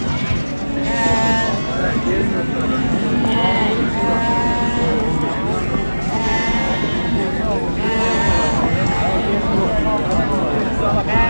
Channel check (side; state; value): both; inverted; correlation -1.00